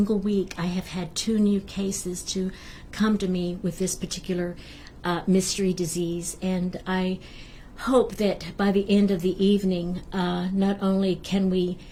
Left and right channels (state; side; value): identical; both; correlation 1.00